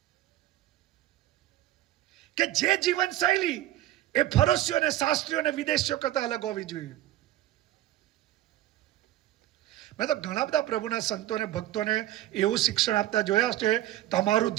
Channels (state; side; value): quieter; left; 14.4 dB